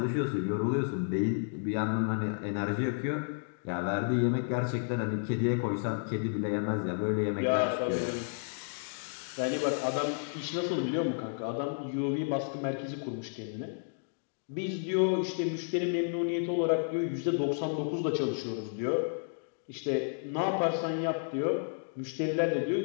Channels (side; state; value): right; silent; digital silence